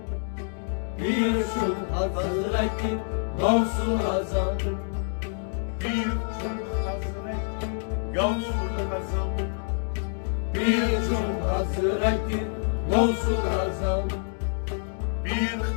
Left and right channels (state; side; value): silent; right; 60 dB below the other